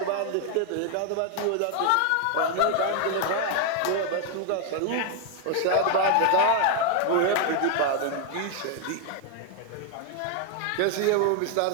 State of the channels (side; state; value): both; different; correlation 0.00